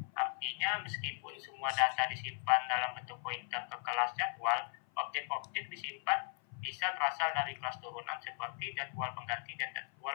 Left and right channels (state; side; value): silent; right; 53 dB below the other